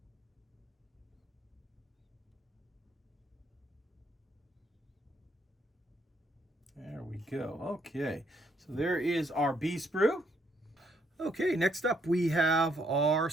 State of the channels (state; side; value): normal; both; correlation 0.71